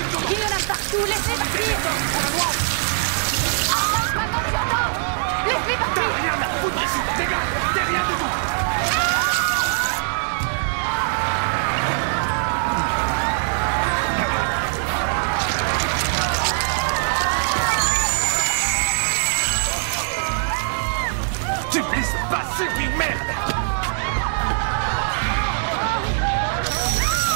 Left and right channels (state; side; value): silent; left; digital silence